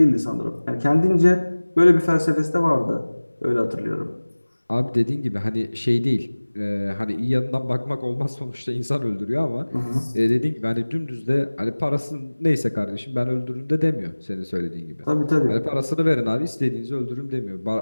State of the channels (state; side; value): inverted; both; correlation -1.00